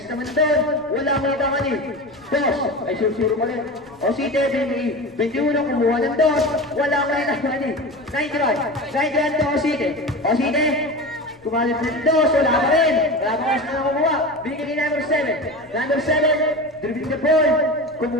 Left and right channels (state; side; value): noise; left; rumble, 29 dB below the sound